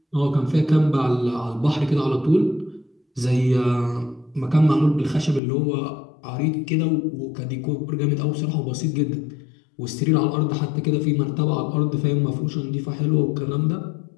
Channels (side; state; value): right; drops out; at 5.4 s